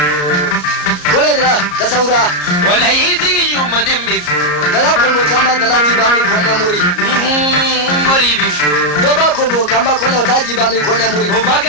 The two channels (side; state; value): right; late; 34 ms